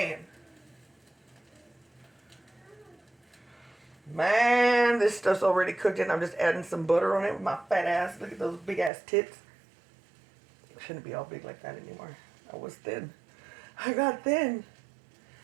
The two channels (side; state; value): left; drops out; at 8.9 s